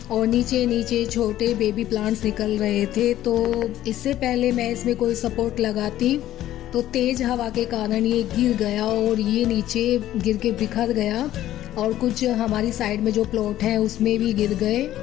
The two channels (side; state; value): right; quieter; 13.3 dB